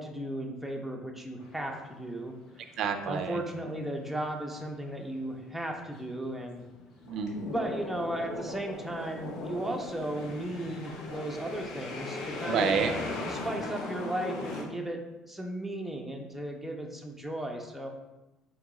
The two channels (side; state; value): both; normal; correlation 0.67